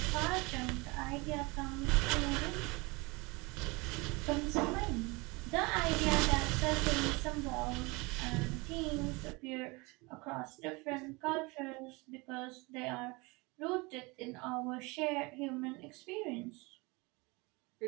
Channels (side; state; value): left; quieter; 25.9 dB